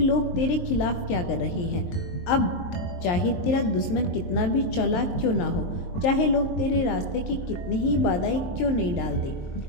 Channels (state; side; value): late; right; 23 ms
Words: लोग तेरे खिलाफ क्या कर रहे हैं। अब चाहे तेरा दुश्मन कितना भी चालाक क्यों ना हो, चाहे लोग तेरे रास्ते की कितनी ही बाधाएं क्यों नहीं डाल दे,